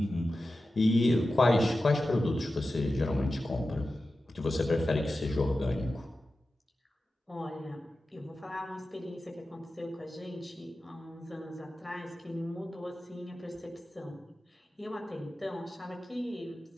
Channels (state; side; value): normal; both; correlation 0.93